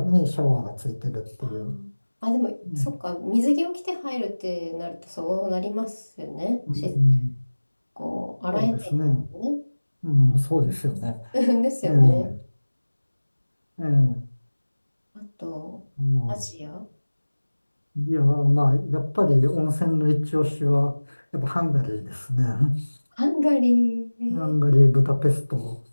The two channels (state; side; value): inverted; both; correlation -1.00